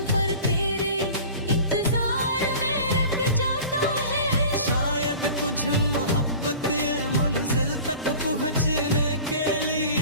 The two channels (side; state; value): both; inverted; correlation -0.40